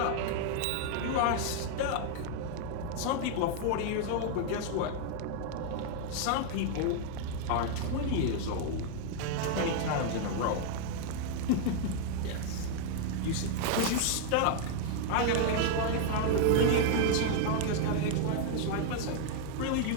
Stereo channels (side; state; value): both; different; correlation 0.00